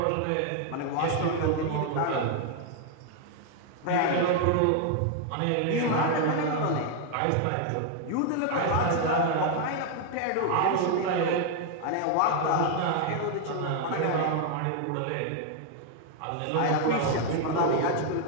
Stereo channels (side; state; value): both; different; correlation 0.00